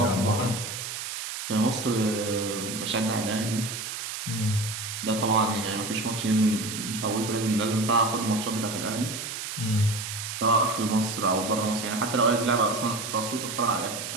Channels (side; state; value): right; noise; hiss, 6 dB below the sound